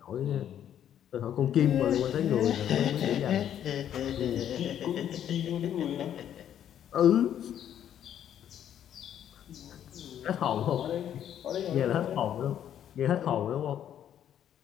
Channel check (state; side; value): quieter; right; 10.1 dB